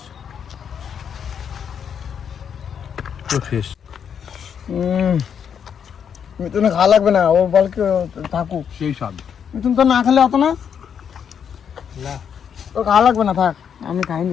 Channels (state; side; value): quieter; right; 7.8 dB